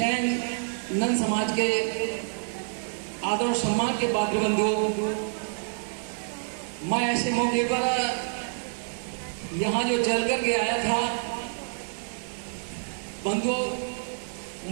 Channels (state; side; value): silent; left; 58 dB below the other